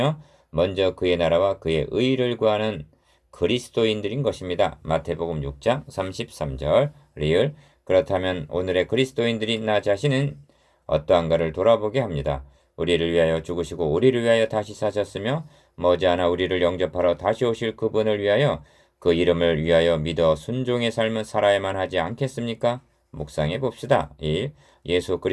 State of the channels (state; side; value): identical; both; correlation 1.00